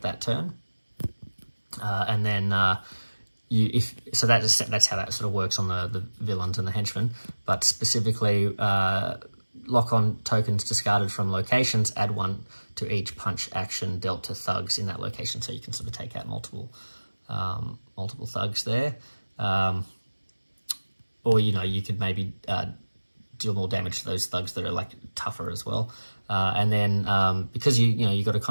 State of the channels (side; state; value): both; inverted; correlation -1.00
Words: that turn. And then that's how that sort of works on the villains and the henchmen. But specifically, lock on tokens discarded from locations, add 1 to each punch action dealt to thugs in that location. So you can sort of take out multiple thugs there. Or, you could maybe deal more damage to those thugs that are like tougher as well. And then because you got to